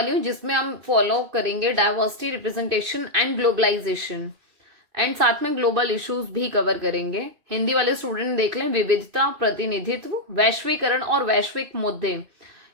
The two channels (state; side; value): late; left; 2.6 ms